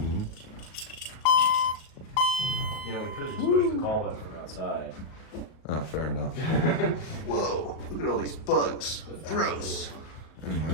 You know, we could have just pushed the call button from outside. Oh, fair enough. Whoa, look at all these bugs. Gross.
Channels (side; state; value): right; late; 38 ms